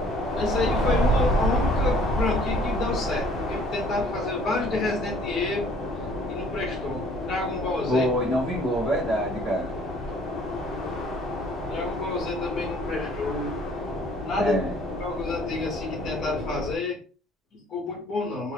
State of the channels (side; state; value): both; normal; correlation 0.56